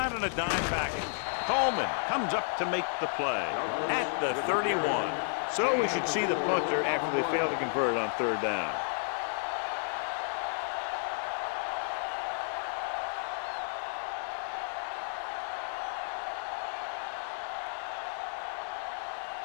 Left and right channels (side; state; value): right; silent; 56 dB below the other